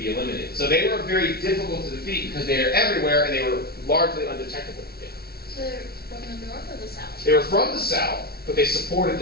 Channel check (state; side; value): late; right; 0.45 ms